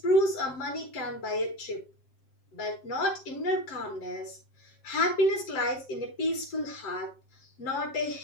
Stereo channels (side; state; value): right; late; 7.6 ms